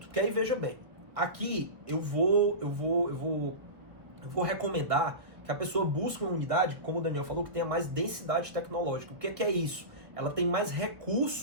que aí veja bem, aqui eu vou recomendar que a pessoa busque uma unidade, como o Daniel falou, que tenha mais densidade tecnológica. O que é isso? Ela tem mais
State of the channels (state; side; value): late; left; 1.2 ms